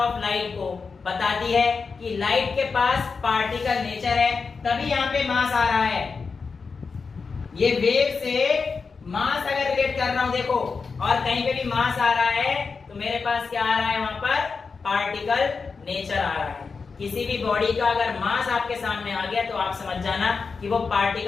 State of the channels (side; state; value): right; quieter; 4.9 dB